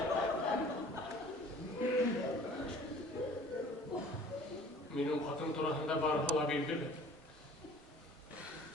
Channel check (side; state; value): both; normal; correlation 0.49